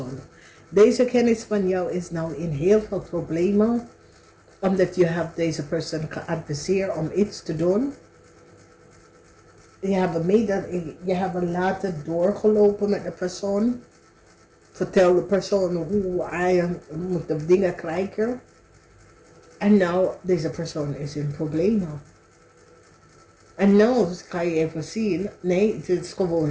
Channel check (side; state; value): both; identical; correlation 1.00